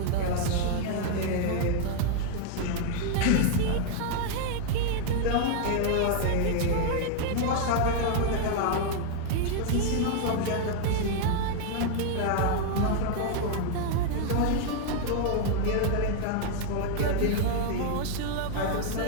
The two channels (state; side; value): different; both; correlation 0.00